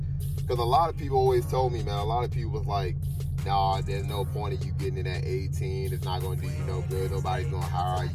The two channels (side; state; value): both; identical; correlation 1.00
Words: Because a lot of people always told me, man, a lot of people was like, nah, there's no point of you getting it at 18. It's not going to do you no good. Nobody's going to hire